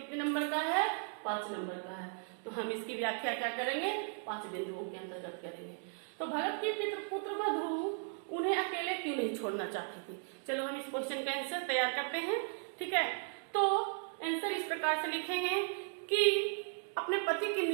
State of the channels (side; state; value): left; silent; 53 dB below the other